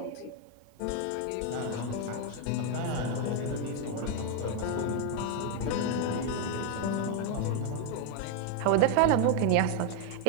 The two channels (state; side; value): different; both; correlation 0.01